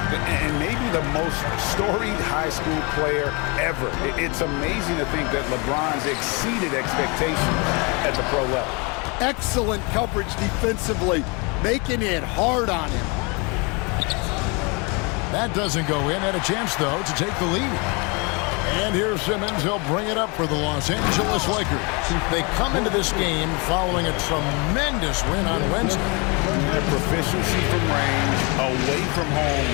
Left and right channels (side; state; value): right; quieter; 30.4 dB